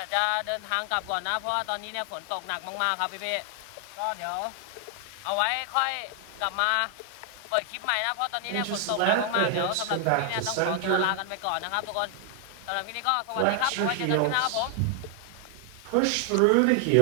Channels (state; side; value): different; both; correlation 0.00